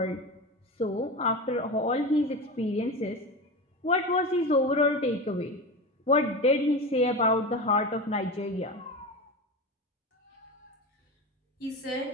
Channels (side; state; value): both; normal; correlation 0.24